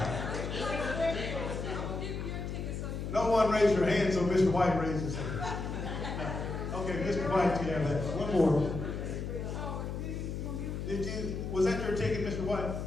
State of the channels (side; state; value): left; noise; hum, 4 dB below the sound